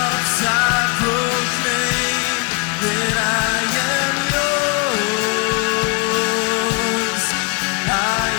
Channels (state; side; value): quieter; right; 28.7 dB